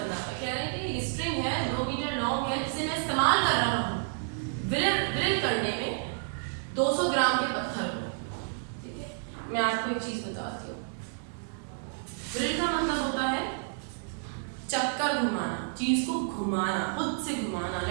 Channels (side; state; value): left; silent; digital silence